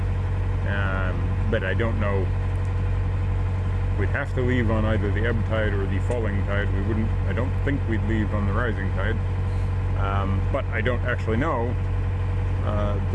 But I don't know. We'd have to leave on either the ebb tide or the falling tide. We wouldn't, I don't think we'd leave on the rising tide. But I don't actually know,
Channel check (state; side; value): identical; both; correlation 1.00